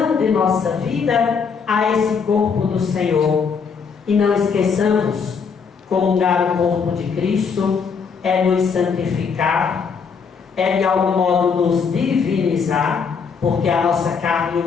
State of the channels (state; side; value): quieter; right; 5.8 dB